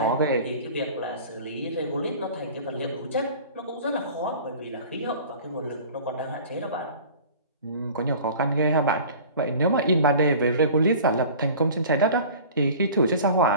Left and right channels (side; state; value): both; inverted; correlation -0.42